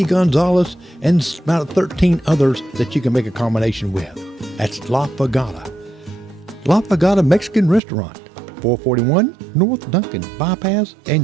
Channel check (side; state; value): left; drops out; at 7.8 s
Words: Gonzales and about 13 others that you can make a combination with. That's La Pagata. La Pagata Mexican Restaurant, 441 North Duncan Bypass